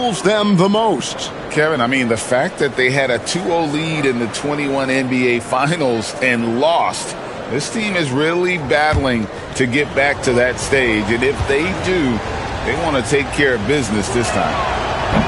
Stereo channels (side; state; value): both; identical; correlation 1.00